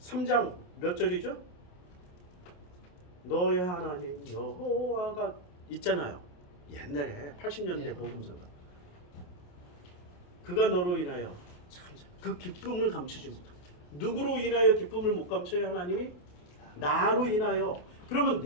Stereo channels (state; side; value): late; right; 28 ms